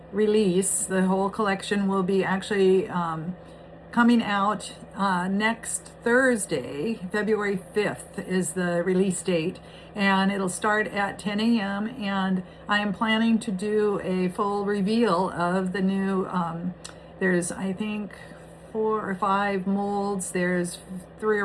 release. The whole collection will be actually coming out next Thursday, February 5th is the release date, and it'll start at 10 a.m. and I am planning to do a full reveal of the new, there's I think 4 or 5 molds, there's 3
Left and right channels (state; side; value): identical; both; correlation 1.00